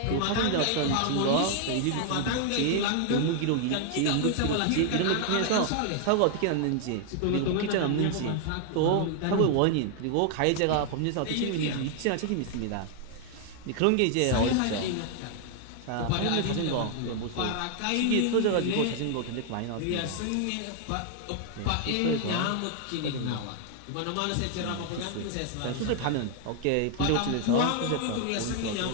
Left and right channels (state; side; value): different; both; correlation 0.00